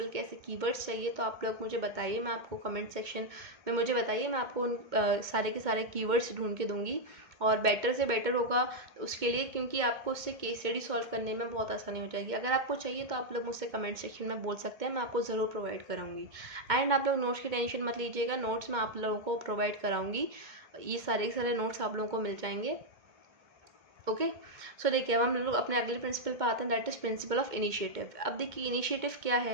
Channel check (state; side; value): late; left; 2.1 ms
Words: के ऐसे कीवर्ड्स चाहिए तो आप लोग मुझे बताइए, मैं आपको कमेंट सेक्शन में मुझे बताइए, मैं आपको उन सारे के सारे कीवर्ड्स ढूंढ के दूंगी, और बेटर से बेटर होगा उसके लिए, क्योंकि आपको उससे केस स्टडी सॉल्व करने में बहुत आसानी हो जाएगी। अगर आपको चाहिए तो आप लोग मुझसे कमेंट सेक्शन में बोल सकते हैं, मैं आपको ज़रूर प्रोवाइड कराऊंगी। एंड आप लोग नोट्स की टेंशन मत लीजिएगा, नोट्स मैं आप लोगों को प्रोवाइड कराऊंगी, ये सारे के सारे नोट्स आप लोगों को मिल जाएंगे। ओके, सो देखिए अब हम लोग अपने अगले प्रिंसिपल पर आते हैं, that is principle of initiative. अब देखिए इनिशिएटिव क्या